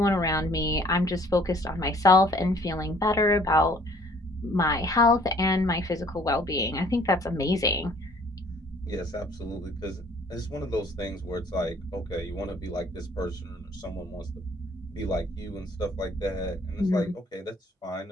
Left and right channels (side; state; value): both; normal; correlation 0.57